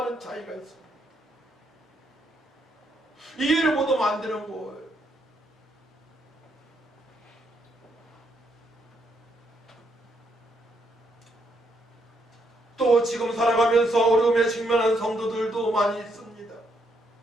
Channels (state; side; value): normal; both; correlation 0.75